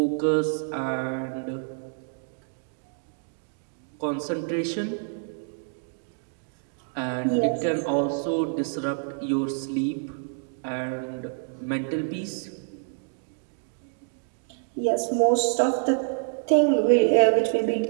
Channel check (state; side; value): silent; left; 57 dB below the other